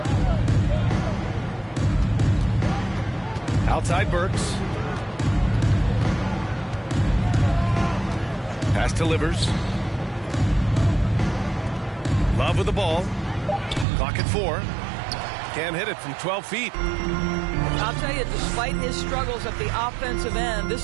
Outside Burks. Pass to Livers. Love with the ball. Clock at 4. Can't hit it from 12 feet. I'll tell you, despite his struggles at the offensive end,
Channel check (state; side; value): drops out; left; at 13.9 s